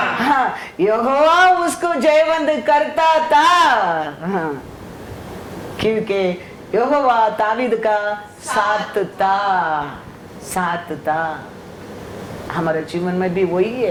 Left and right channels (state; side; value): identical; both; correlation 1.00